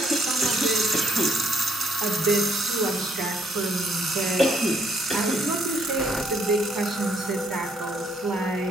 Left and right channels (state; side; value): normal; both; correlation 0.68